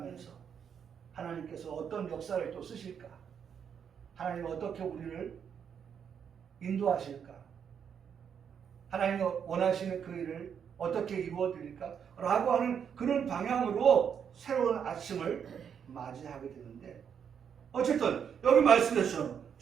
하나님께서 어떤 역사를 또 쓰실까? 하나님 어떻게 우리를 인도하실까? 하나님이 원하시는 그 일을 어떻게 이루어드릴까? 라고 하는 그런 방향으로 새로운 아침을 맞이하게 되는데 어쨌든 여기 말씀했죠.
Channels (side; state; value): left; quieter; 7.6 dB